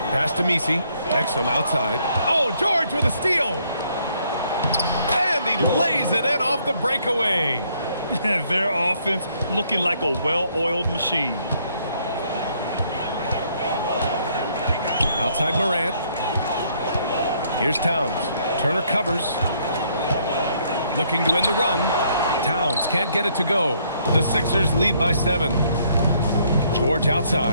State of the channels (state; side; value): inverted; both; correlation -0.68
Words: Pass to Messi. Exum outside. Oh, George with a steal. And he lays it in off the breakaway. Their offense looking like a well-oiled machine. Outside Morant. Here's Towns. Turner covers. Looking to end the run. Towns can't get it to go. The Sixers lead by 7. George